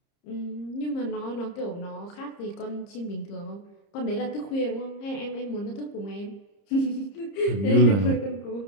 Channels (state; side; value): late; right; 30 ms